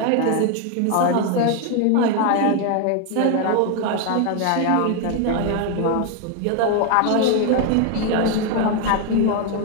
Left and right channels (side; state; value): both; different; correlation 0.01